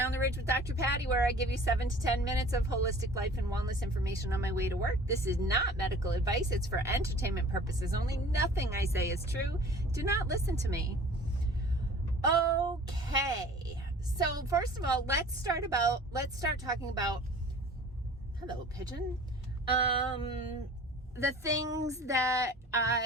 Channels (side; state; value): both; normal; correlation 0.46